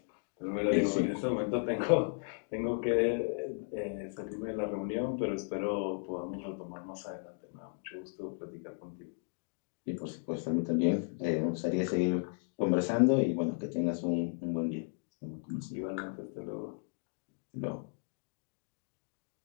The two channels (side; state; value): right; silent; 54 dB below the other